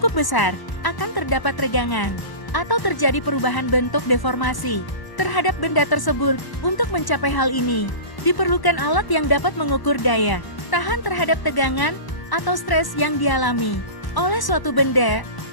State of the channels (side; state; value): right; late; 1.0 ms